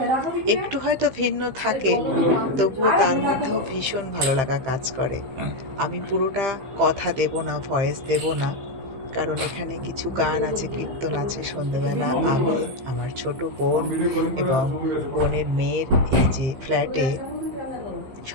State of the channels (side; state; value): left; late; 15 ms